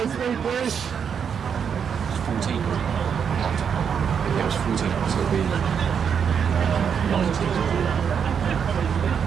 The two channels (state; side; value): quieter; left; 7.2 dB